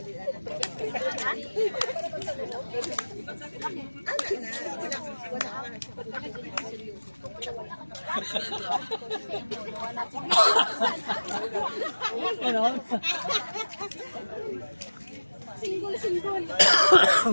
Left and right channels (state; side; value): inverted; both; correlation -1.00